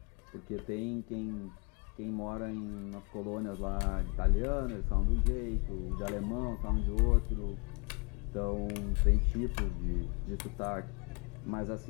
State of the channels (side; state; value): right; quieter; 33.2 dB